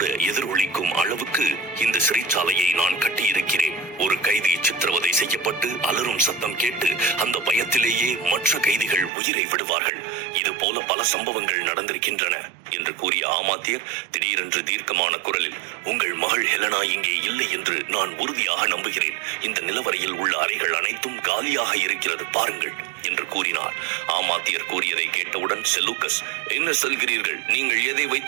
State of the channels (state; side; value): drops out; left; at 9.1 s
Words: எதிரொலிக்கும் அளவுக்கு இந்த சிறைச்சாலையை நான் கட்டியிருக்கிறேன். ஒரு கைதி சித்திரவதை செய்யப்பட்டு அலறும் சத்தம் கேட்டு அந்த பயத்திலேயே மற்ற கைதிகள் உயிரை விடுவார்கள். இது போல பல சம்பவங்கள் நடந்திருக்கின்றன என்று கூறிய ஆமாத்தியர் திடீரென்று தீர்க்கமான குரலில், உங்கள் மகள் ஹெலனா இங்கே இல்லை என்று நான் உறுதியாக நம்புகிறேன். இந்த நிலவரையில் உள்ள அறைகள் அனைத்தும் காலியாக இருக்கிறது, பாருங்கள் என்று கூறினார். ஆமாத்தியர் கூறியதை கேட்டவுடன் செலூக்கஸ், என்ன சொல்கிறீர்கள்? நீங்கள் எதை